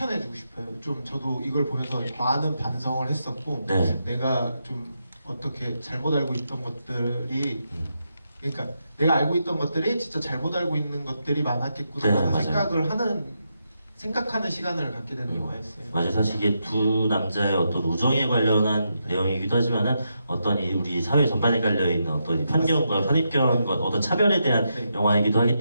싶어요. 좀 저도 이걸 보면서 많은 반성을 했었고 네. 내가 좀 어떻게 잘못 알고 있던 것들이 그러니까 내가 알고 있던 것들이 진짜 잘못 알고 있는 것들이 많았겠구나 네, 하는 맞아요. 생각하는 시간을 갖게 되는 영화였어요. 맞아요. 사실 이게 두 남자의 어떤 우정에 관련한 내용이기도 하지만은 어떤 우리 사회 전반에 깔려있는 어떤 이 편견과 선입견과 어떤 차별에 대한 네. 영화이기도 하기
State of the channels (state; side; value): inverted; both; correlation -0.83